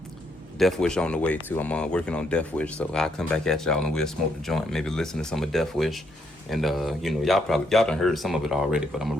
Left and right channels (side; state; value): both; normal; correlation 0.75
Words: Death Wish on the way too. I'm working on Death Wish, so I'll come back at y'all and we'll smoke the joint. Maybe listen to some of Death Wish, and you know, y'all done heard some of it already, but I'm